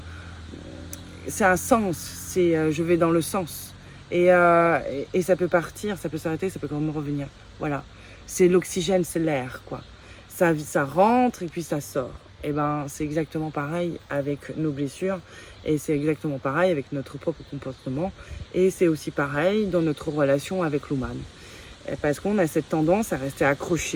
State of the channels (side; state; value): both; identical; correlation 1.00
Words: sens. C'est je vais dans le sens. Et ça peut partir, ça peut s'arrêter, ça peut quand même revenir. Voilà. C'est l'oxygène, c'est l'air, quoi. Ça rentre et puis ça sort. Et c'est exactement pareil avec nos blessures. Et c'est exactement pareil avec notre propre comportement. Et c'est aussi pareil dans notre relation avec l'humain. Parce qu'on a cette tendance à rester